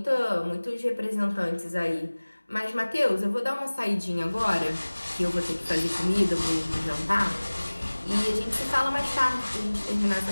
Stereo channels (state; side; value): inverted; both; correlation -1.00